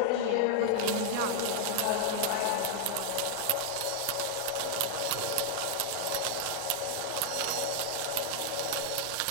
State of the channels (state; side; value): different; both; correlation -0.01